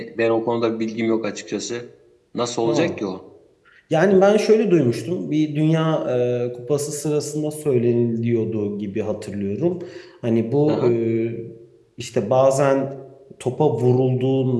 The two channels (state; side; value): identical; both; correlation 1.00